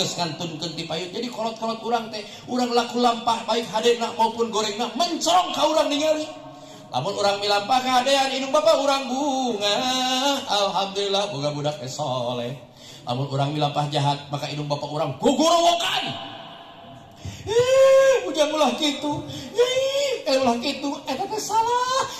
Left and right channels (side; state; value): both; identical; correlation 1.00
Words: ngantunkeun ti payun jadi kolot-kolot urang teh urang laku lampah baik hadena maupun gorengna mencorong ka urang ningali lamun urang milampah ka hadean indung bapa urang bunga alhamdulillah boga budak soleh lamun urang milampah jahat maka indung bapa urang gogorowokan ujang ulah gitu ulah gitu eta